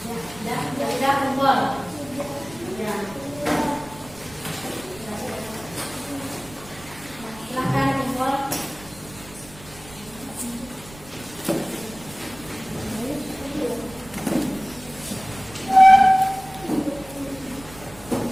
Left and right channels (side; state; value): right; noise; rumble, 20 dB below the sound